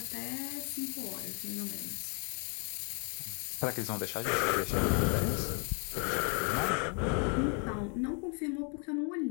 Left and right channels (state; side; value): quieter; right; 38.4 dB